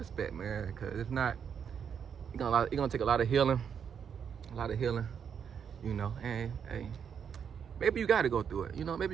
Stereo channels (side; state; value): left; quieter; 7.5 dB